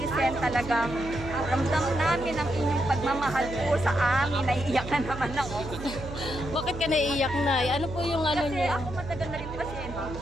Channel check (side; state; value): right; noise; hum, 10 dB below the sound